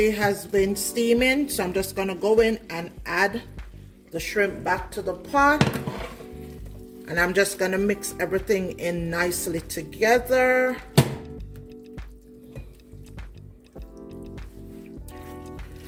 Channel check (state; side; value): identical; both; correlation 1.00